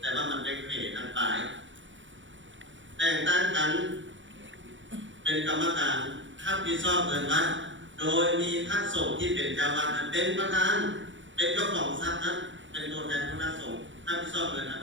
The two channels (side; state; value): left; late; 0.55 ms